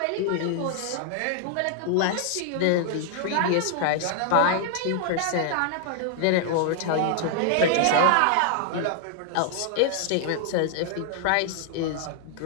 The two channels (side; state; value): both; different; correlation 0.00